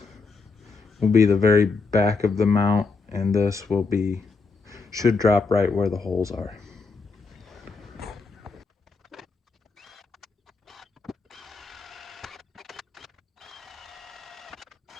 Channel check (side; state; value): right; quieter; 4.3 dB